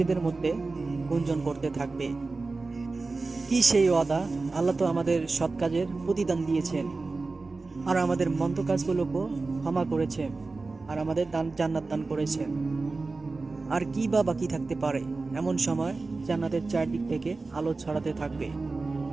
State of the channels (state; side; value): quieter; left; 3.7 dB